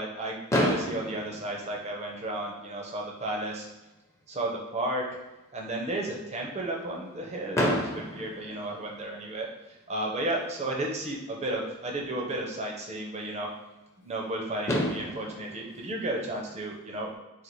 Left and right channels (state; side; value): normal; both; correlation 0.28